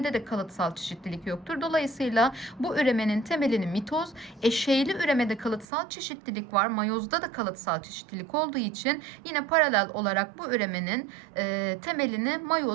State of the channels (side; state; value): left; drops out; at 5.7 s